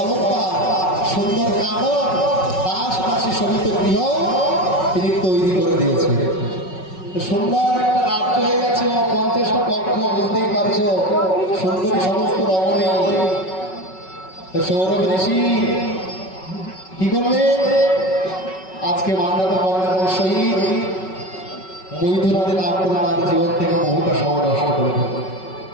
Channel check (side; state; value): right; late; 5.4 ms